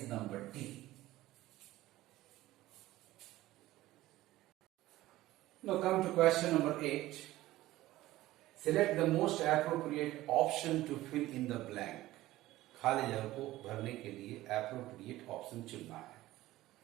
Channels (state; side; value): quieter; left; 16.5 dB